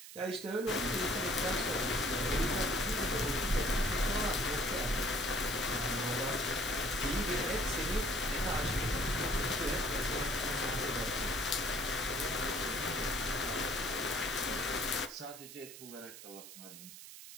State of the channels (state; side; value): noise; right; hiss, 14 dB below the sound